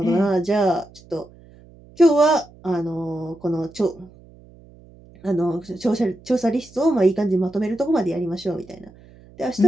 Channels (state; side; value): noise; right; hum, 24 dB below the sound